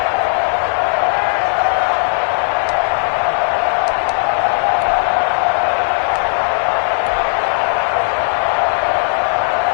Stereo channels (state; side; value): silent; right; 69 dB below the other